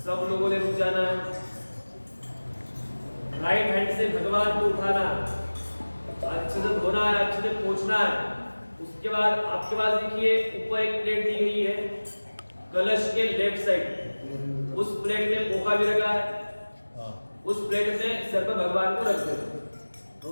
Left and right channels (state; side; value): inverted; both; correlation -1.00